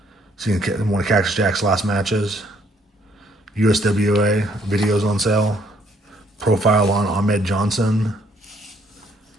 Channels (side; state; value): both; normal; correlation 0.66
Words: Seeing one of Cactus Jack's last matches. USWA, videos on sale. Profile on Ahmed Johnson.